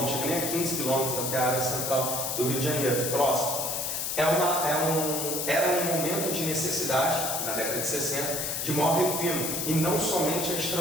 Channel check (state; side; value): noise; left; hiss, 1 dB below the sound